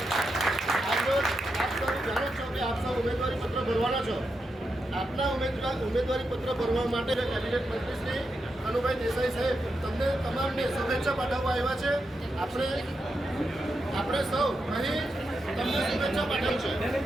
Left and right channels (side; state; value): both; normal; correlation 0.86